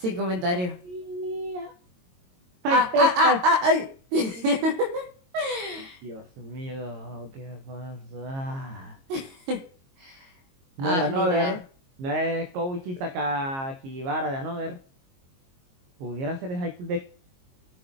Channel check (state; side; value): late; left; 22 ms